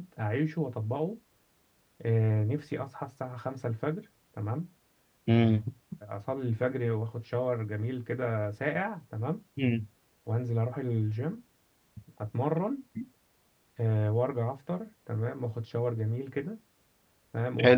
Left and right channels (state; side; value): identical; both; correlation 1.00